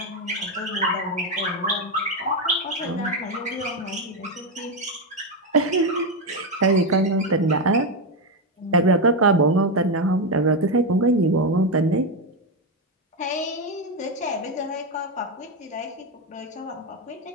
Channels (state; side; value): normal; both; correlation 0.08